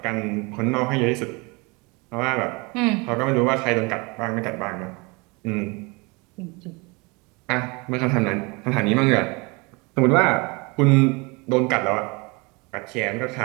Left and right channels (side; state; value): left; quieter; 27.7 dB